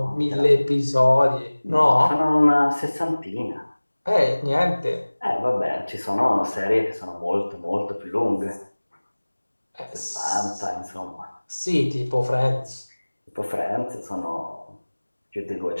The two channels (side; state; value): both; inverted; correlation -1.00